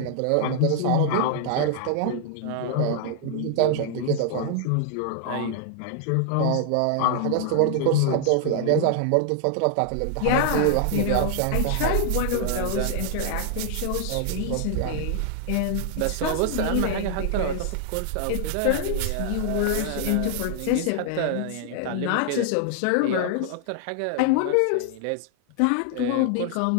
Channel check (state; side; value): different; both; correlation 0.00